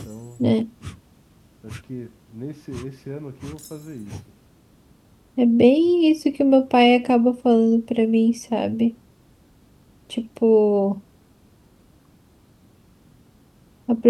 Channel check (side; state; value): both; identical; correlation 1.00